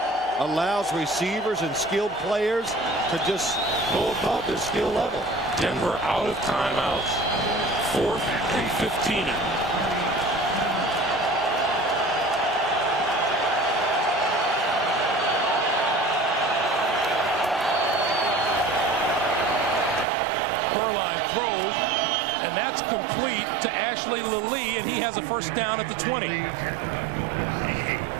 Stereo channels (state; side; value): drops out; left; at 20.1 s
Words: allows receivers and skilled players to just go above their skill level. Denver out of timeouts. 4th and 15. Throws, and that's complete to Ashley Lilly, and he has a first down at the 20.